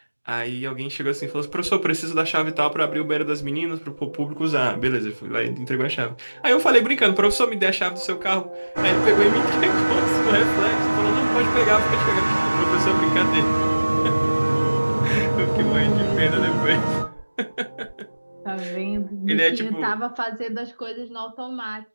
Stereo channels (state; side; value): inverted; both; correlation -1.00